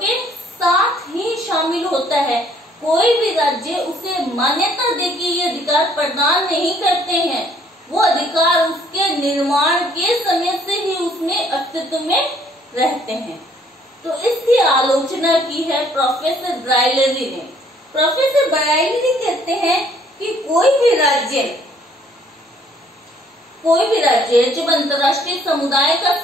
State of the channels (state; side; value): normal; both; correlation 0.62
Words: साथ ही शामिल होता है। कोई भी राज्य उसे मान्यता दे के ये अधिकार प्रदान नहीं करते हैं, वो अधिकार उसके निर्माण के समय से ही उसमें अस्तित्व में रहते हैं। तो इसकी आलोचना की है प्रोफेसर ब्राइलरी ने। प्रोफेसर ब्राइलरी कहते हैं कि कोई भी राज्य कोई भी राज्य जब अंतर्राष्ट्रीय समुदाय का